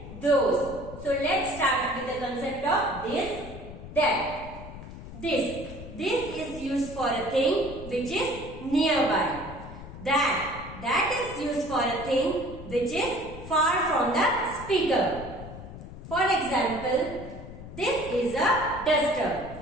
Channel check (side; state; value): left; noise; rumble, 13 dB below the sound